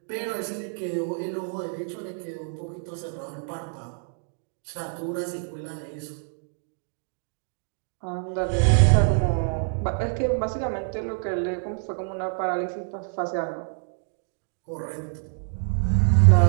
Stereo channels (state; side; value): silent; left; 55 dB below the other